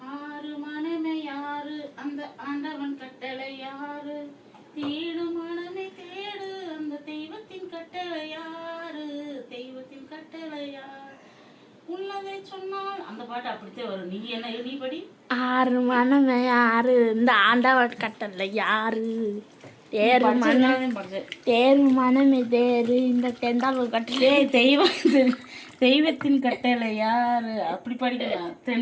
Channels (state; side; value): identical; both; correlation 1.00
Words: ஆறு மனமே யாரு, அந்த ஆண்டவன் கட்டளை யாரு, தேடு மனமே தேடு, அந்த தெய்வத்தை தெய்வத்தின் கட்டளை யாரு, தெய்வத்தின் கட்டளை யார், உள்ளதை சொன்னால் அந்த பாட்டு அப்படித்தான் வரும். நீ என்ன நீ படி. ஆறு மனமே யாரு, இந்த ஆண்டவன் கட்டளை யாரு, தேரு மனம் தேரு மனமே தேரு, இந்த தெண்டாளர் கட்டளை தெய்வத்தின் கட்டளை யாரு அப்படி படிக்கலாம்.